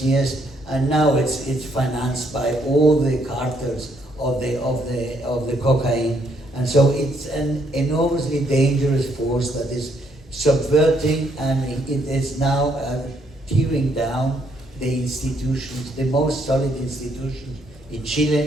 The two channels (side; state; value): both; normal; correlation 0.71